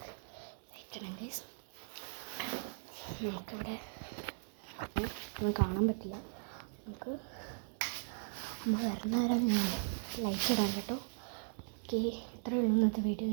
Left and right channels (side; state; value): left; silent; digital silence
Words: ലൈറ്റ് ഇടാം. ഗൈസ് നമുക്കിവിടെ ഒന്നും കാണാൻ പറ്റില്ല. നമുക്ക് അമ്മ വരുന്ന നേരം ലൈറ്റ് ഇടാം കേട്ടോ. ഓക്കെ, ഇത്രയേ ഉള്ളൂ ഇന്നത്തെ വീഡിയോ.